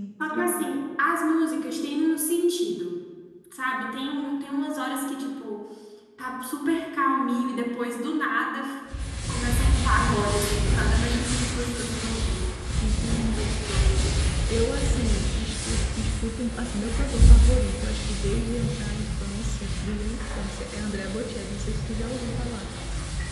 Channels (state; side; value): identical; both; correlation 1.00